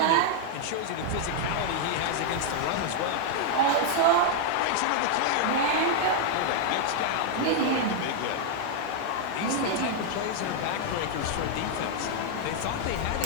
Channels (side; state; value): both; different; correlation 0.00